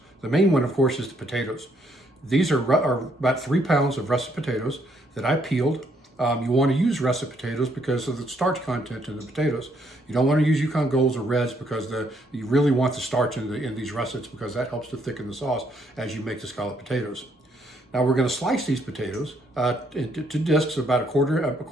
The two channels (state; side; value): normal; both; correlation 0.71